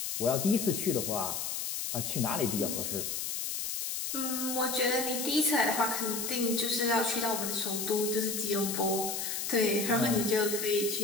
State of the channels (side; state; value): left; noise; hiss, 3 dB below the sound